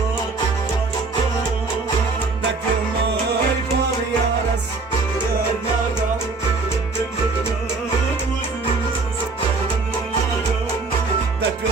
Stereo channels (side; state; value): left; quieter; 3.9 dB